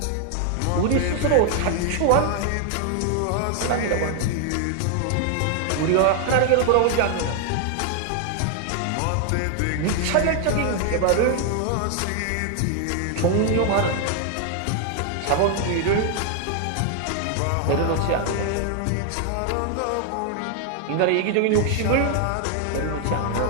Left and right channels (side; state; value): both; different; correlation 0.00